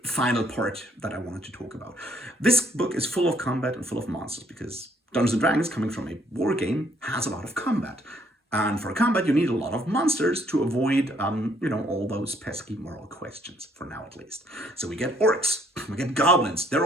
final part that I wanted to talk about. This book is full of combat and full of monsters because Dungeons and Dragons, coming from a war game, has a lot of combat. And for combat, you need a lot of monsters to avoid, all those pesky moral questions, for now at least. So we get orcs, we get goblins. They're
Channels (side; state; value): both; normal; correlation 0.67